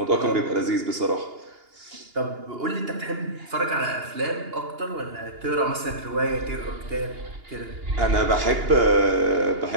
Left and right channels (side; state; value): left; late; 2.8 ms